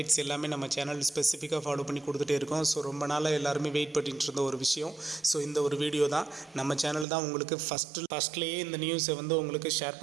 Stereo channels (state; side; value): drops out; left; at 7.1 s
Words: எல்லாமே நம்ம சேனல் ஸ்பெசிஃபிக்காக ஃபாலோ பண்ணி கொடுத்துட்டே இருக்கோம். ஸோ ரொம்ப நாளாக எல்லாருமே வெயிட் பண்ணிட்டு இருந்த ஒரு விஷயம். ஸோ இந்த ஒரு வீடியோ தான் நம்ம சேனல் தான் உங்களுக்கு ஃபஸ்ட்லேயே இந்த நியூஸை உங்களுக்கு ஷேர்